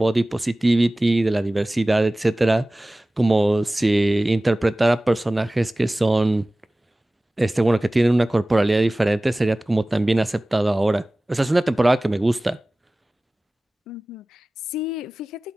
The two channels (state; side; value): normal; both; correlation 0.98